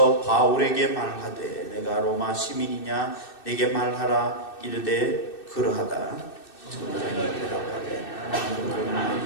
바울에게 말하되 내가 로마 시민이냐 내게 말하라. 이르되 그러하다. 천부장이 대답하되 나는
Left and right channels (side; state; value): right; late; 2.6 ms